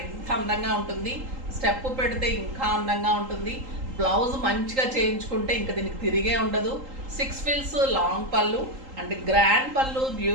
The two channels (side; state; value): left; late; 3.8 ms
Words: ఇంత అందంగా ఉంటుంది. స్టెప్ పెడితే ఇంకా అందంగా ఉంటుంది. బ్లౌజ్ మంచిగా చేయించుకుంటే ఇంకా దీనికి తిరిగే ఉండదు. 6 ఫిల్స్ లాంగ్ పళ్ళు అండ్ గ్రాండ్ పళ్ళు,